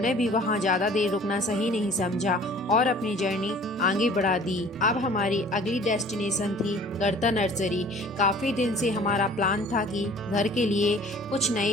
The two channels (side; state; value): both; normal; correlation 0.50